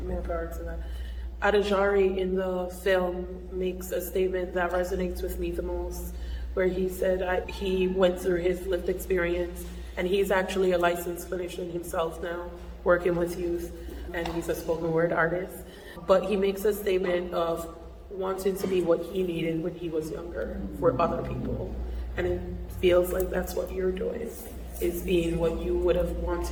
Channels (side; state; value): both; identical; correlation 1.00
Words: More power to that. Adajari in the film makes a statement that resonates with me the most, where he said he went through his lived experience, and he's actually a licensed clinician himself now, working with youth, and he's a spoken word artist. But he makes a statement of wanting to be what he needed when he was younger for other people. And it feels like that's what you're doing, is being what you would have